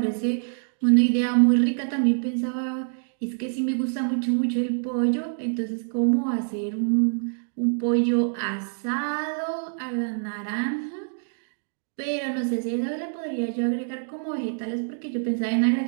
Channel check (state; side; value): silent; left; digital silence